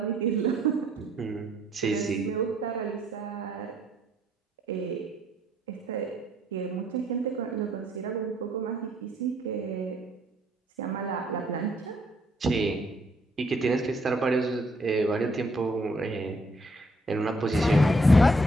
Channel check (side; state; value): both; normal; correlation 0.68